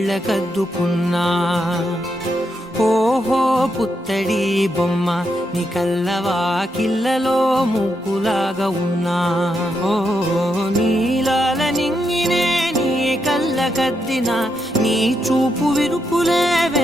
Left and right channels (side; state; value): both; normal; correlation 0.82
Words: ఓహో పుత్తడి బొమ్మ నీ కళ్ళవాకిళ్ళలో ముగ్గులాగా ఉన్నా. ఓ నీలాల నింగినే నీ కళ్ళకద్దిన నీ చూపు విరుపులే